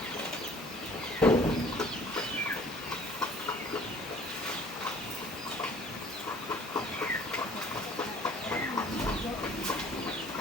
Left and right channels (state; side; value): normal; both; correlation 0.52